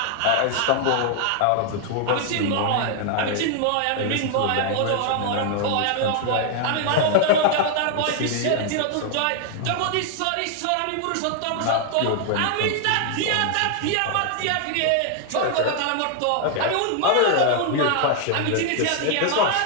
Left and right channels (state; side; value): different; both; correlation 0.00